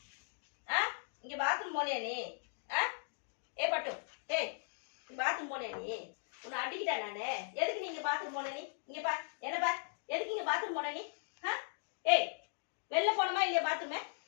இங்க பாத்ரூம் போனியா நீ? பட்டு. டேய். பாத்ரூம் போனியா நீ? உன்னை அடிக்கிட்டா நானு. எதுக்கு நீங்க பாத்ரூம் போன நீ? இங்க பா. என்ன பா? எதுக்கு இங்க பாத்ரூம் போன நீ? ஏய். வெளில போணுமா இல்லையா பாத்ரூம்?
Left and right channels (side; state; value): right; silent; digital silence